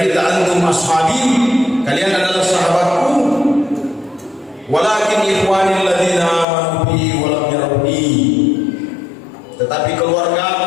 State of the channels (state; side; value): drops out; right; at 6.5 s